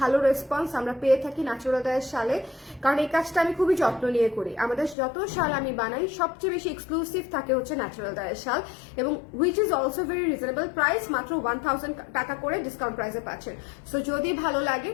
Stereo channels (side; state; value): right; drops out; at 5.0 s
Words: রেসপন্স আমরা পেয়ে থাকি ন্যাচারাল ডায়ের শালে, কারণ এই কাজটা আমি খুবই যত্ন নিয়ে করি। আমাদের যত শাল আমি বানাই সবচেয়ে বেশি এক্সক্লুসিভ থাকে হচ্ছে ন্যাচারাল ডায়ের শাল, এবং which is also very reasonable price, মাত্র 1000 টাকা করে ডিসকাউন্ট প্রাইসে পাচ্ছেন। সো যদি ভালো লাগে